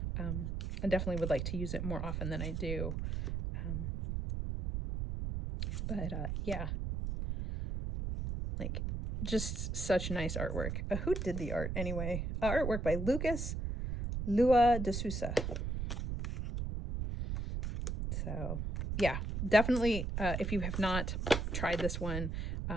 definitely would like to use it more often than I do. Yeah, like, just such nice artwork. Who did the art anyway? Artwork by Lucas Lua de Sousa. So yeah, definitely, if you have not tried this one,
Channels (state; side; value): noise; right; rumble, 3 dB below the sound